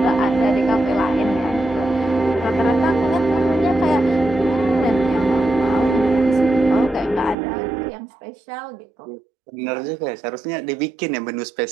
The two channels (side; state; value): left; drops out; at 7.4 s